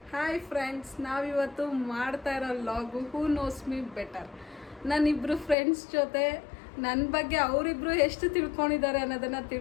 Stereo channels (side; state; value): right; drops out; at 5.6 s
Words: Hi friends, ನಾವಿವತ್ತು ಮಾಡ್ತಾ ಇರೋ ಲಾಗು ಹೂ ನೋಸ್ ಮೀ ಬೆಟರ್. ನಾನಿಬ್ಬರು ಫ್ರೆಂಡ್ಸ್ ಜೊತೆ ನನ್ನ ಬಗ್ಗೆ ಅವರಿಬ್ರು ಎಷ್ಟು ತಿಳ್ಕೊಂಡಿದ್ದಾರೆ ಅನ್ನೋದನ್ನು